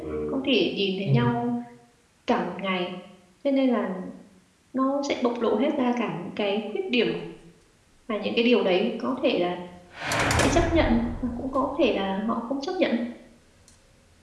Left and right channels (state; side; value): identical; both; correlation 1.00